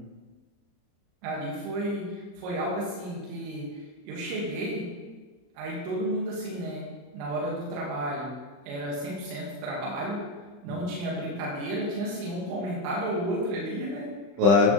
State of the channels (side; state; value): left; late; 35 ms